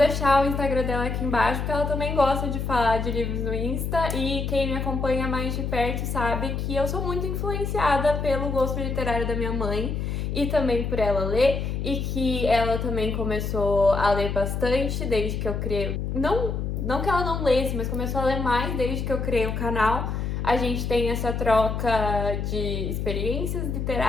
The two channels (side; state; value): left; noise; hum, 2 dB below the sound